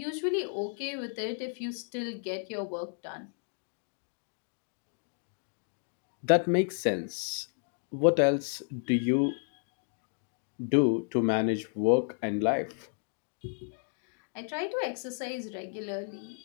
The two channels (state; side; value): silent; right; 56 dB below the other